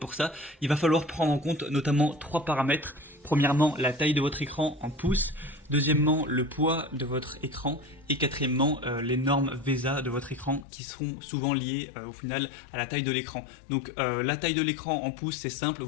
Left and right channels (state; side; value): drops out; right; at 10.7 s